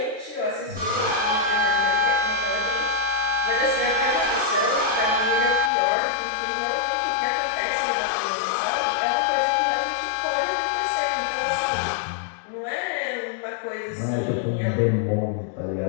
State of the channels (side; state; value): right; drops out; at 5.7 s